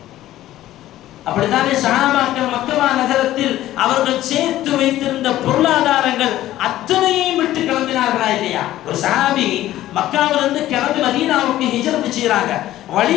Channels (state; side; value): quieter; right; 14.2 dB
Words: அப்படித்தானே சஹாபாக்கள் மக்கா நகரத்தில் அவர்கள் சேர்த்து வைத்திருந்த பொருளாதாரங்கள் அத்தனையும் விட்டு கிளம்பினார்களா இல்லையா? ஒரு சஹாபி மக்காவிலிருந்து கிளம்பி மதீனாவுக்கு ஹிஜ்ரத் செய்றாங்க.